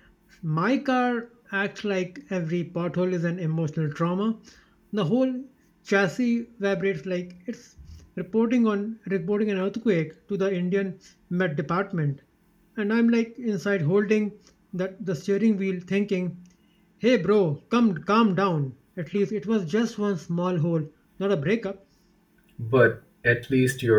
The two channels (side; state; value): both; identical; correlation 1.00